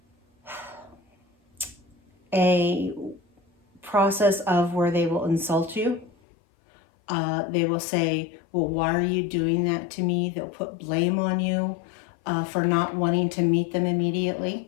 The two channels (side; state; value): right; drops out; at 6.1 s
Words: a process of where they will insult you. They will say, well, why are you doing that to me? They'll put blame on you for not wanting to meet them immediately.